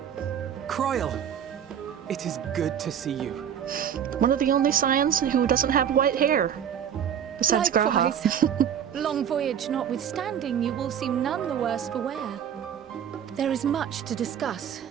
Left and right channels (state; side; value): quieter; left; 8.8 dB